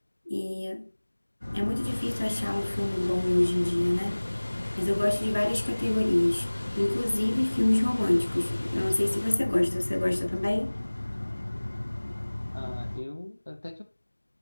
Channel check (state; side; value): inverted; both; correlation -1.00